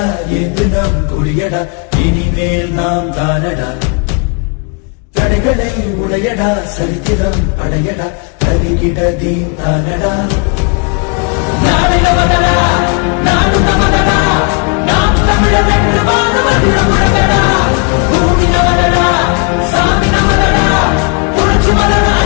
குடியடா இனிமேல் நாம் தானடா. தடைகளை உடையடா, சரித்திரம் படையடா, கருகிட தீன் தானடா.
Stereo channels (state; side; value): quieter; right; 34.2 dB